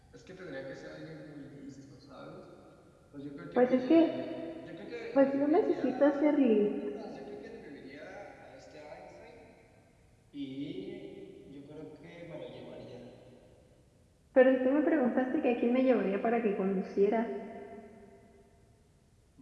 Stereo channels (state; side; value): identical; both; correlation 1.00